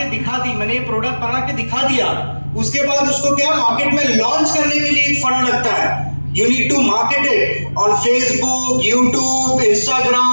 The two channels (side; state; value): both; inverted; correlation -1.00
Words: दिखा दी, मैंने ये प्रोडक्ट बना के दिखा दिया, उसके बाद उसको क्या मार्केट में लॉन्च करने के लिए एक फंड लगता है। You need to market it on Facebook, YouTube,